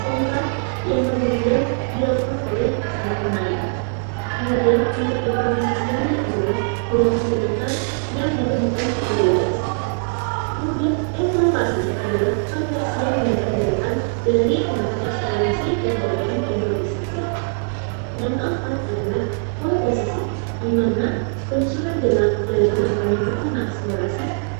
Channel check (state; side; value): silent; left; 64 dB below the other